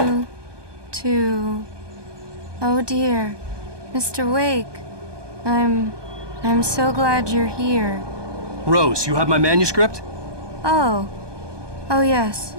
Oh dear, Mr. Wake. I'm so glad you're here. Rose, you have my manuscript? Oh. Oh, yes.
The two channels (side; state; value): left; late; 1.2 ms